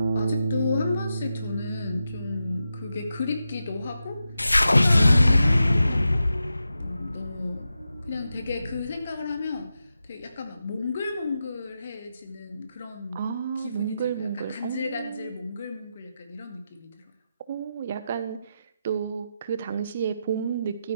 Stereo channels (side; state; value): both; inverted; correlation -0.89